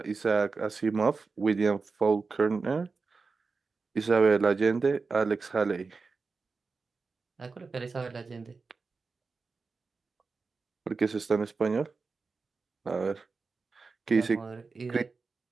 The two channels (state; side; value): quieter; left; 4.4 dB